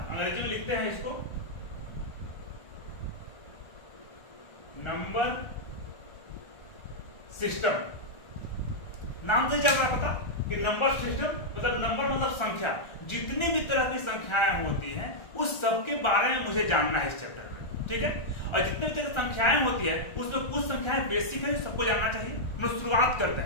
अंग्रेजी में लिखते हैं इसको नंबर सिस्टम। नाम से चल रहा है पता कि नंबर सिस्टम मतलब नंबर मतलब संख्या। जितनी भी तरह की संख्याएं होती हैं उस सब के बारे में मुझे जानना है इस चैप्टर में, ठीक है। और जितने भी तरह की संख्याएं होती है उसमें कुछ संख्याएं बेसिक है जो सबको जानना चाहिए। हम शुरुआत करते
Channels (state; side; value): late; right; 1.3 ms